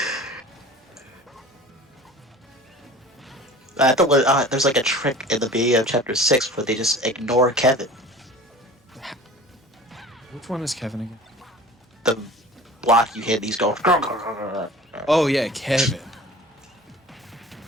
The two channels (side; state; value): both; normal; correlation 0.42